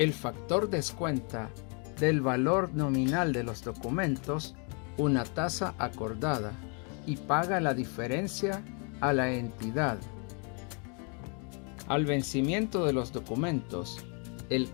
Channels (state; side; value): quieter; right; 37.0 dB